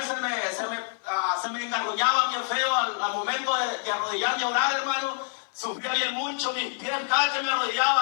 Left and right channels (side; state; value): right; silent; 57 dB below the other